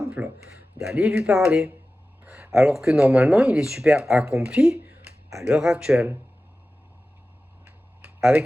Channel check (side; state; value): both; normal; correlation 0.95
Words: d'aller lui parler. Alors que normalement, il est super accompli à l'heure actuelle.